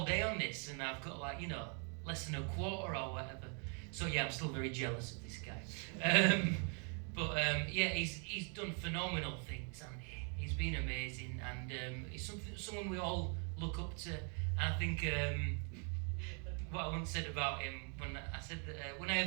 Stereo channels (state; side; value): quieter; left; 39.3 dB